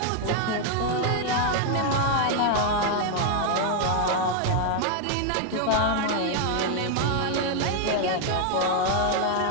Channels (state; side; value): different; both; correlation 0.00